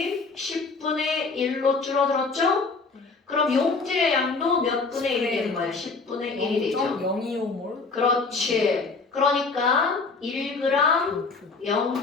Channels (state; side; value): quieter; right; 4.2 dB